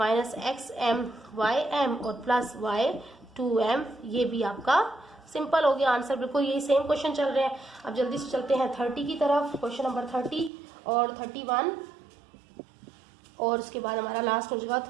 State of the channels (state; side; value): drops out; left; at 10.5 s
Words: xm ym और प्लस y 2m। ये भी आपका सिंपल हो गया आंसर, बिल्कुल यही सेम क्वेश्चन चल रहे हैं। अब जल्दी से चलते हैं 30 की तरफ। क्वेश्चन नंबर 30 और 31 और उसके बाद हमारा लास्ट हो जाएगा